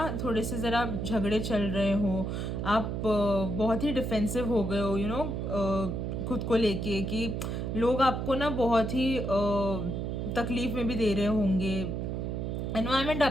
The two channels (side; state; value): right; noise; hum, 3 dB below the sound